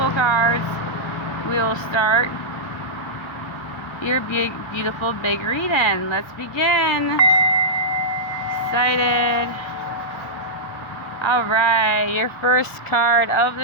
cards, we will start your beautiful big reading. Let's begin. Excited. Alright, your first card of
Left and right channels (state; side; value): late; right; 1.7 ms